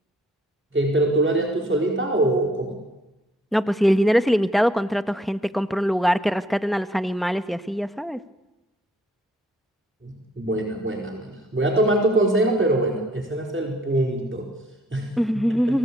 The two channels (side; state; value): both; normal; correlation 0.63